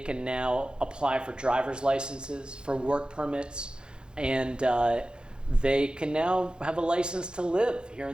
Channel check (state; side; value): late; left; 0.049 ms